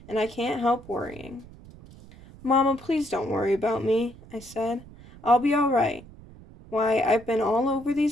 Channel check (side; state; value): right; noise; rumble, 20 dB below the sound